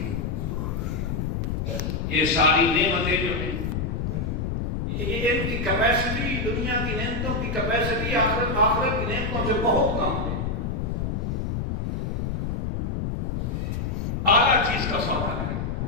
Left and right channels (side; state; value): left; noise; rumble, 1 dB below the sound